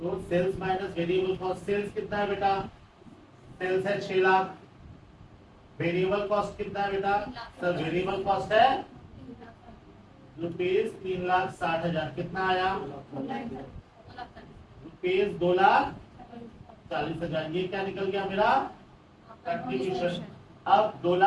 sales minus variable cost. Sales कितना है बेटा? सेल्स है 6 लाख। वेरिएबल कॉस्ट कितना है बेटा? सर वेरिएबल कॉस्ट है ₹3,60,000। कितना आया? ₹2,40,000। ये क्या निकल गया मेरा? कंट्रीब्यूशन। अब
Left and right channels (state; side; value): identical; both; correlation 1.00